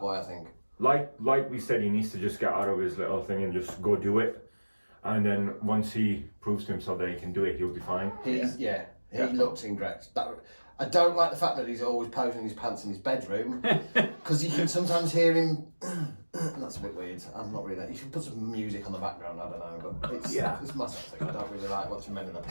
I think. Like we said, he needs to just get out of his little thing and just go do it. And then once he proves to himself that he can do it, he'll be fine. He looks incorrect. I don't like the fact that he's always posing his pants in his bedroom because you can sometimes hear him. That's a bit weird. I'm not really that. You should put some music on the background. I don't know, but it's my sort of thing. I don't really like watching men in their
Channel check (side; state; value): both; inverted; correlation -1.00